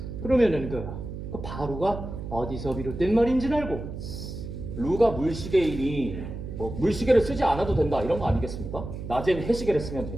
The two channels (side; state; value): right; noise; hum, 8 dB below the sound